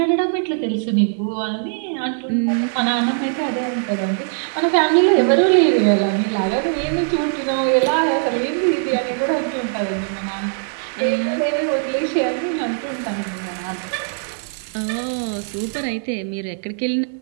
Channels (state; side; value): silent; left; 65 dB below the other